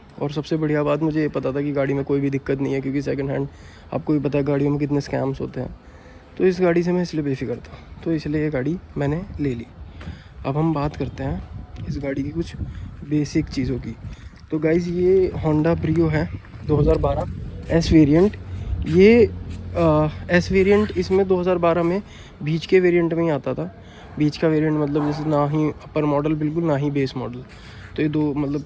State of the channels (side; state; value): both; identical; correlation 1.00